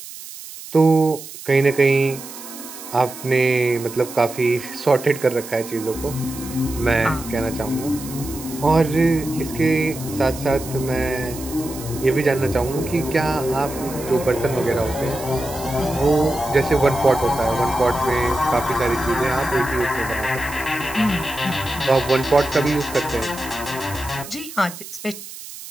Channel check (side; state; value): right; noise; hiss, 13 dB below the sound